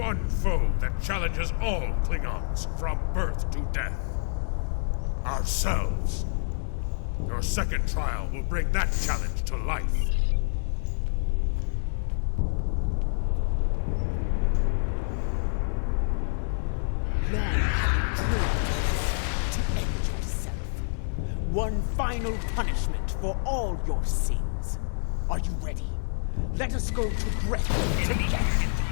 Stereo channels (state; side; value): silent; right; digital silence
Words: foe that challenges all Klingons from birth to death. Ourselves. Your second trial will bring that challenge to life. Long have you dreamed to end yourself. One final punishment for all your sins. Are you ready? Let us go to Grethel together.